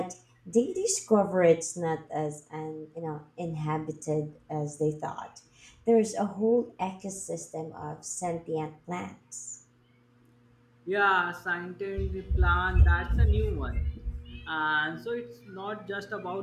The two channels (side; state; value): both; identical; correlation 1.00